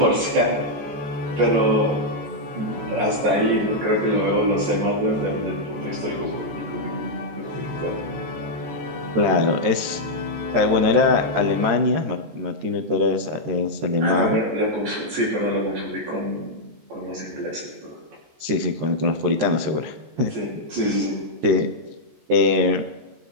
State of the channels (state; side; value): late; left; 14 ms